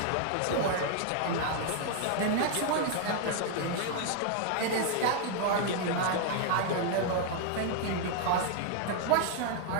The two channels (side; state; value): both; different; correlation 0.00